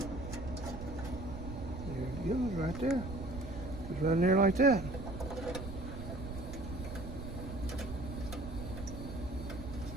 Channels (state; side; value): noise; right; rumble, 8 dB below the sound